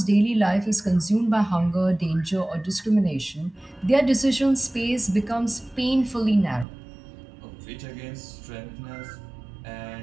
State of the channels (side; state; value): left; drops out; at 6.7 s